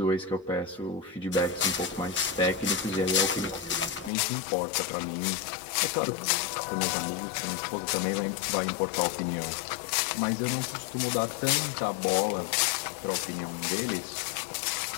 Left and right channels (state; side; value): drops out; right; at 4.1 s